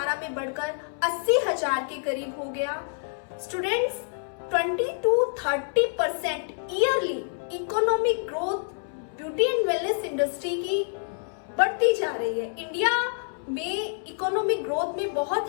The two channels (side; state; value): right; silent; 60 dB below the other